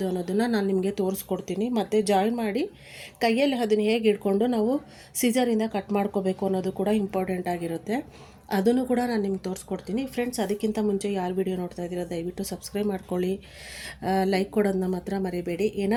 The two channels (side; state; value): both; identical; correlation 1.00